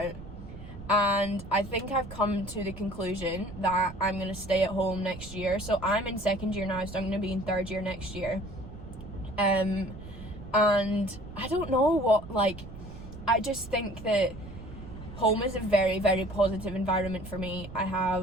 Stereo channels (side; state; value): right; noise; rumble, 13 dB below the sound